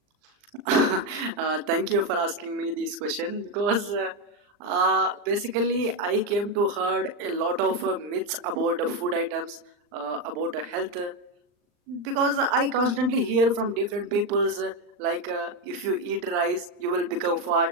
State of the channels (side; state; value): left; late; 39 ms